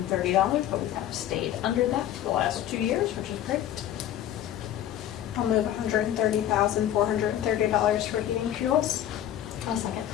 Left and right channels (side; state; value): right; quieter; 11.6 dB